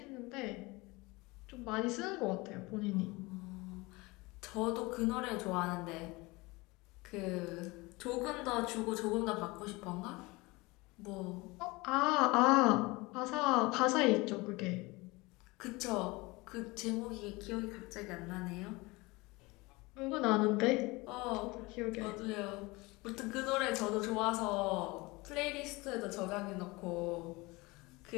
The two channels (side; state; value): right; quieter; 23.5 dB